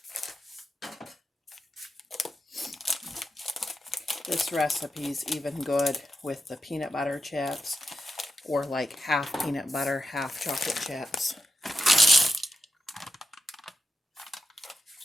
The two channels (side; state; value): both; normal; correlation 0.86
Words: This recipe's even good with the peanut butter chips, or like half peanut butter, half chocolate chips.